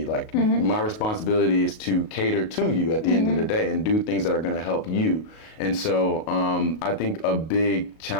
Like my responsibility is to cater to you at the end of the day and do things that are going to help you. And so I think a big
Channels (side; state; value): right; late; 37 ms